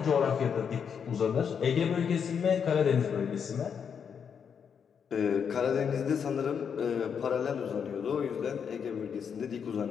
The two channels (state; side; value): quieter; right; 7.1 dB